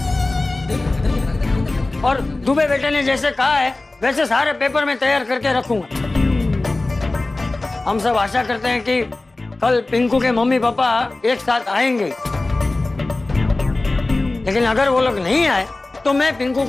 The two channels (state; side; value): quieter; right; 3.0 dB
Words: और दुबे बेटे ने जैसे कहा है वैसे सारे पेपर में तैयार करके रखूंगा। हम सब आशा करते हैं कि कल पिंकू के मम्मी पापा एक साथ आएंगे लेकिन अगर वो लोग नहीं आए तो मैं पिंकू